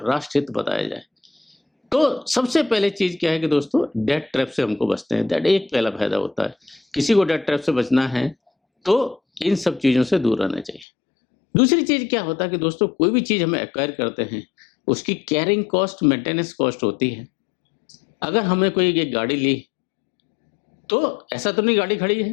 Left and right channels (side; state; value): right; drops out; at 10.9 s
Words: राष्ट्र हित बताया जाए। तो सबसे पहले चीज क्या है कि दोस्तों डेट ट्रैप से हमको बचते हैं। दैट एक पहला फायदा होता है। किसी को डेट ट्रैप से बचना है तो इन सब चीजों से दूर रहना चाहिए। दूसरी चीज क्या होता है कि दोस्तों कोई भी चीज हमें एक्वायर करते हैं उसकी कैरिंग कॉस्ट, मेंटेनेंस कॉस्ट होती है। अगर हमने कोई एक गाड़ी ली तो ऐसा तो नहीं गाड़ी खड़ी